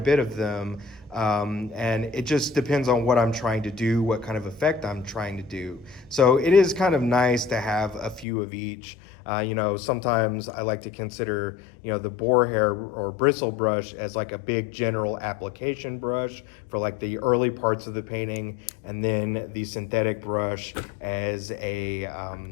of them, and it just depends on what I'm trying to do, what kind of effect I'm trying to do. So it is kind of nice to have a few of each. You know, sometimes I like to consider, you know, the boar hair or bristle brush as like a big general application brush for like the early parts of the painting, and then the synthetic brush as a,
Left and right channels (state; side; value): drops out; right; at 8.2 s